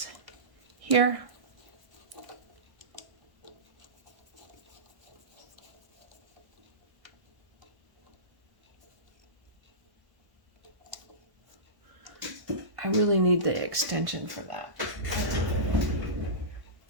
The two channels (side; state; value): left; late; 1.1 ms